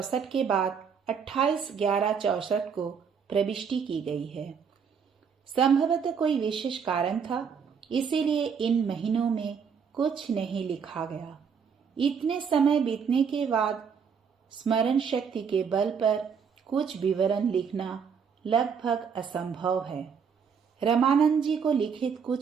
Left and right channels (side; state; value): left; quieter; 6.6 dB